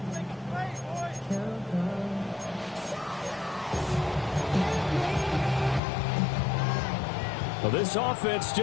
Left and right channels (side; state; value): right; drops out; at 5.8 s